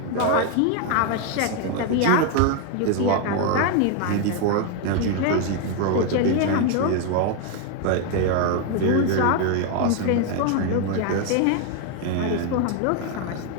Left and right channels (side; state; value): both; different; correlation 0.01